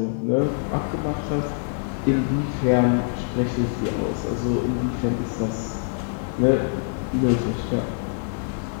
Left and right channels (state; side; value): silent; right; digital silence